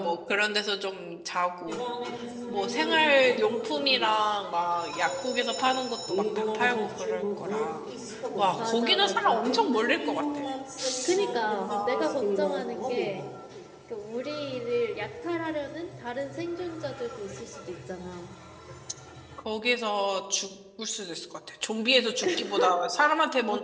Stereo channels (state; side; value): identical; both; correlation 1.00